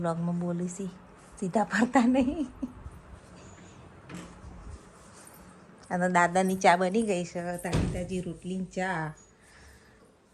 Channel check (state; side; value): identical; both; correlation 1.00